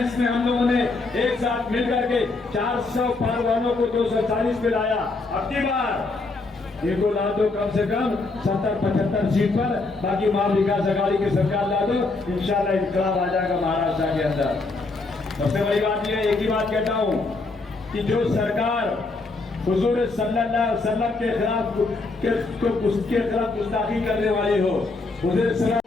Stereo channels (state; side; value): quieter; right; 3.5 dB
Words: में हम लोगों ने एक साथ मिल करके 400 पार वालों को 240 पे लाया, अब की बार इनको ला दो कम से कम 70-75 सीट पर, बाकी महाविकास अघाड़ी की सरकार ला दो, इंशाल्लाह इनकलाब आ जाएगा महाराष्ट्र के अंदर। सबसे बड़ी बात यह, एक ही बात कहता हूं कि जो सरकार हुजूर सल्लल्लाहु अलैहि वसल्लम के खिलाफ गुस्ताखी करने वाली हो, हुजूर सलाम